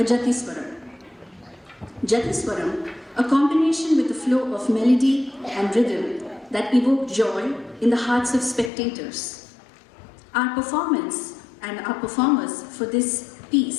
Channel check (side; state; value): right; drops out; at 8.7 s